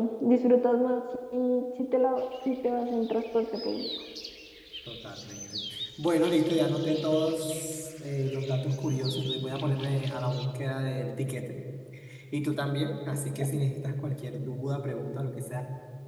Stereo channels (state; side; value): identical; both; correlation 1.00